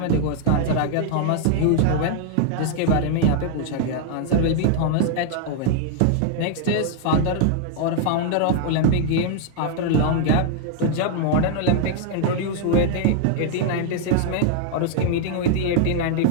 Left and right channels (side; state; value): both; different; correlation 0.00